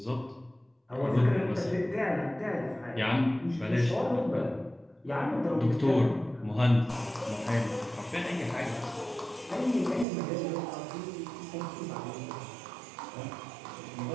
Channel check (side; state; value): left; drops out; at 10.1 s